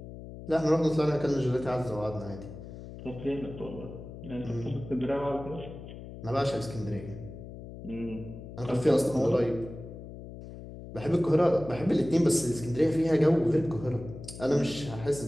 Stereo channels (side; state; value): left; noise; hum, 13 dB below the sound